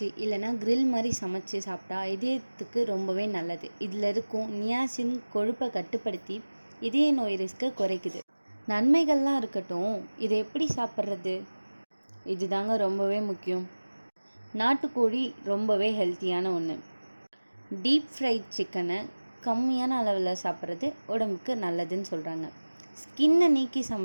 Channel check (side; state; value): both; inverted; correlation -1.00